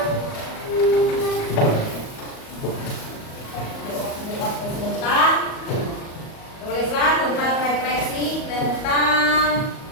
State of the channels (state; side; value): late; right; 38 ms